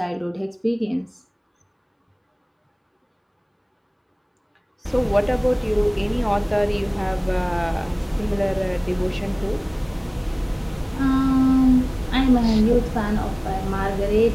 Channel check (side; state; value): both; identical; correlation 1.00